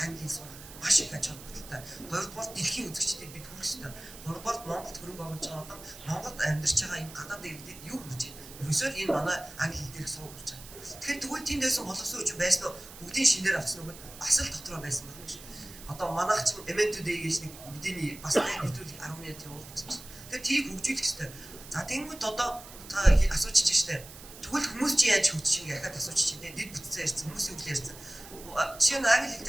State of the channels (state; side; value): noise; right; hiss, 16 dB below the sound